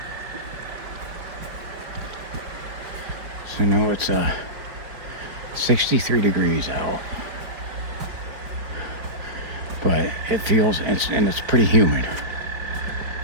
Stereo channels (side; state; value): left; late; 5.3 ms